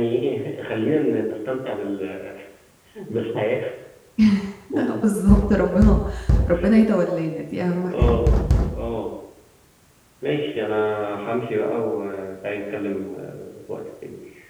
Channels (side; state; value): both; identical; correlation 1.00